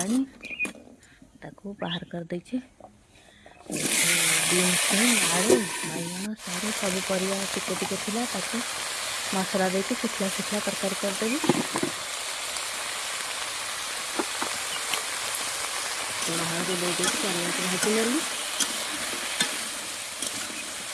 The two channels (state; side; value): identical; both; correlation 1.00